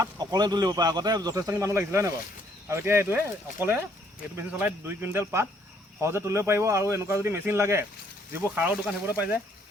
অকলে তুলিব পাৰে। আগতে যথেষ্টখিনি মানুহ লাগিছিলে হয় নাই বাৰু? আৰু এতিয়া এইটোৱে অকলে এইটো মেচিন চলাই 2 কুইণ্টেল পাত সহজে তুলিব পাৰিব। আৰু এনেকুৱা যদি মেচিন লাগে যিবোৰ সাৰৰ দোকান সেইবোৰতে পাই যায়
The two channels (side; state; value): both; normal; correlation 0.66